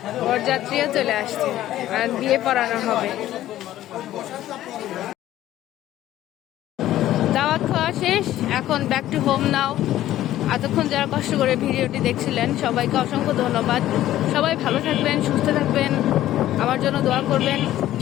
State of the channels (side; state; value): right; quieter; 13.6 dB